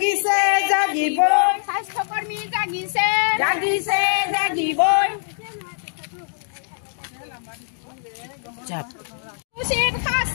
জাগিবই, স্বাস্থ্যকর্মী জাগিছে, জাগিছে জাগিবই, উচিত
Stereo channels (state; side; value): silent; right; 60 dB below the other